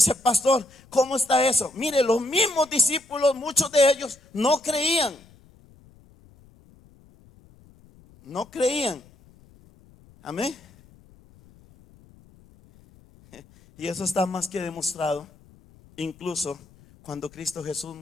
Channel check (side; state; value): left; noise; rumble, 27 dB below the sound